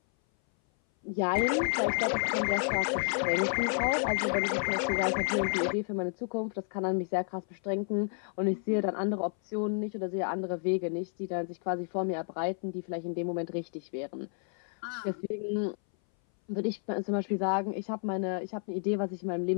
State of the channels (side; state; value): right; silent; 57 dB below the other